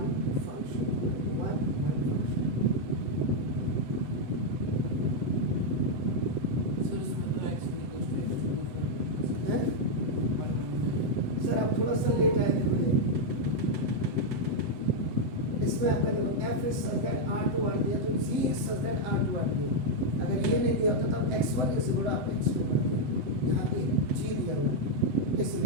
function 1 function. Sir आप थोड़ा सा लेट आए थे. इसमें आपका देखो f is such that r to r दिया तो g is such that r to r दिया. अगर ये नहीं दिया होता तब x1 इज इक्वल टू आप x2 करते हैं. यहाँ पे g दिया हुआ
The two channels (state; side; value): late; left; 7.9 ms